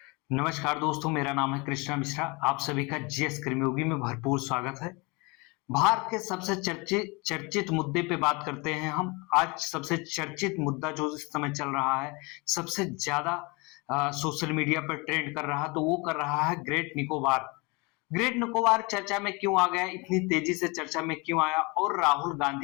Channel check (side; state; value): right; quieter; 27.6 dB